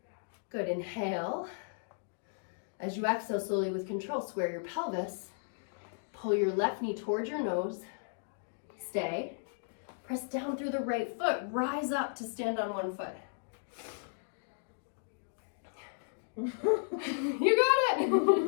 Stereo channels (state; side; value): silent; right; digital silence